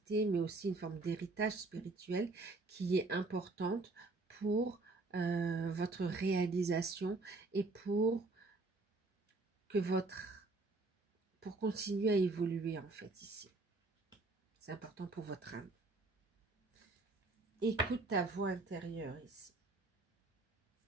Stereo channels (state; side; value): quieter; left; 3.4 dB